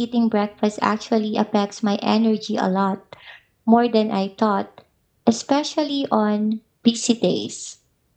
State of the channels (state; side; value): identical; both; correlation 1.00